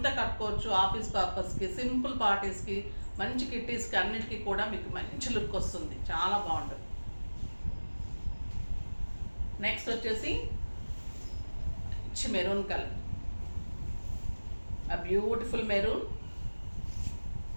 కట్టుకోవచ్చు. ఆఫీస్ పర్పస్కి, సింపుల్ పార్టీస్కి, మంచి కిట్టీస్కి, అన్నిటికీ కూడా మీకు మంచి లుక్ వస్తుంది, చాలా బాగుంటుంది. నెక్స్ట్ వచ్చేసి మంచి మెరూన్ కలర్, బ్యూటిఫుల్ మెరూన్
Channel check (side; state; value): both; inverted; correlation -1.00